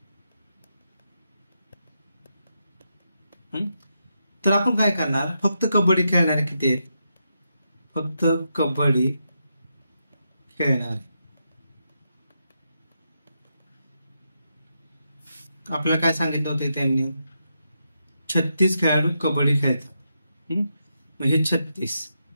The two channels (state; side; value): inverted; both; correlation -0.84